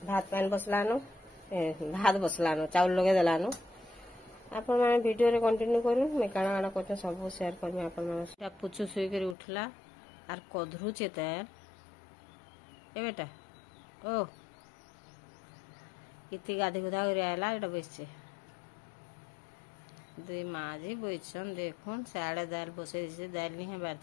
भात पान बसलानो भात बसलानो चावल लगे देलानो आपण माने वीडियो रे कंटिन्यू करू मैं काना काना करते सब शेयर करमी आपण माने पुचु सुई कर उठला आर कधरुचे तेल ए बेटा ओ इति गाधी गुधा कर आला एटा बसছে दुई माजी बइछन देखुन साड़े दाल बसे दिसे दाल नहीं है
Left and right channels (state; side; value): drops out; right; at 9.3 s